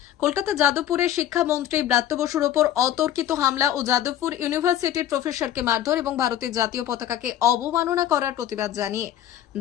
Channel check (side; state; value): right; quieter; 11.4 dB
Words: কলকাতা যাদবপুরে শিক্ষামন্ত্রী ব্রাত্য বসুর ওপর অতর্কিত হামলা ও যাদবপুর ইউনিভার্সিটির প্রফেসরকে মারধর এবং ভারতের জাতীয় পতাকাকে অবমাননা করার প্রতিবাদ জানিয়ে